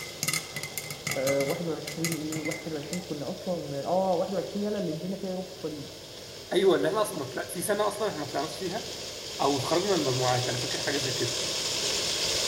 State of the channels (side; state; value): both; identical; correlation 1.00